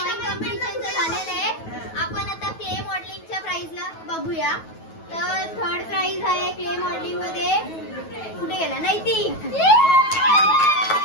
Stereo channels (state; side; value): late; right; 9.3 ms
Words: कॉम्पिटिशनचं झालेलं आहे. आपण आता क्ले मॉडेलिंगच्या प्राइजला बघूया. तर थर्ड प्राइज आहे क्ले मॉडेलिंग मध्ये कुठे गेला नैतिक.